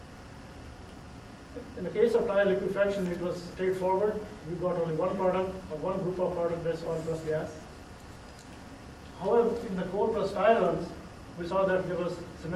In the case of tire liquefaction, it was straightforward. We got only one product, or one group of product, that's oil plus gas. However, in the coal plus tire runs, we saw that there was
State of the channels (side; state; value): both; identical; correlation 1.00